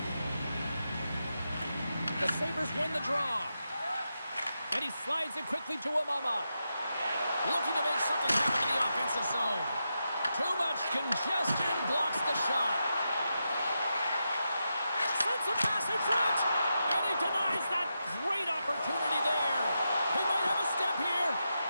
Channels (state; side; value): inverted; both; correlation -0.87